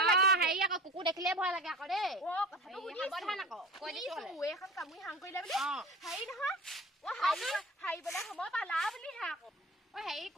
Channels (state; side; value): normal; both; correlation 0.36